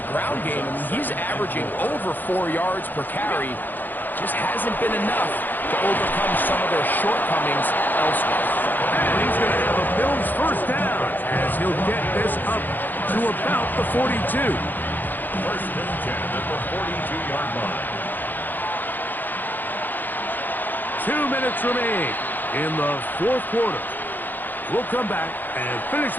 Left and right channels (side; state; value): right; late; 0.088 ms